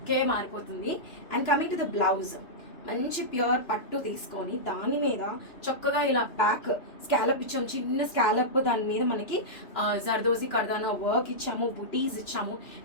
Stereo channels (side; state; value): right; late; 3.0 ms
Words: మారిపోతుంది. And coming to the blouse, మంచి ప్యూర్ పట్టు తీసుకొని దాని మీద చక్కగా ఇలా బ్యాక్ స్కాలప్ ఇచ్చాము, చిన్న స్కాలప్. దాని మీద మనకి జర్దోజీ కర్దానా వర్క్ ఇచ్చాము, బుటీస్ ఇచ్చాము.